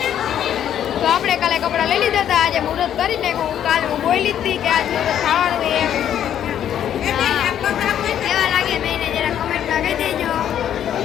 તો આપણે કાલે કપડાં લઈ લીધા હતા. આજે મુહૂર્ત કરી નાખ્યું. કાલે હું બોલી હતી કે આજ મુહૂર્ત ખાવાનું એમ. કેવા લાગે મેં જરા કમેન્ટમાં કહી દેજો.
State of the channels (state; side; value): quieter; right; 10.1 dB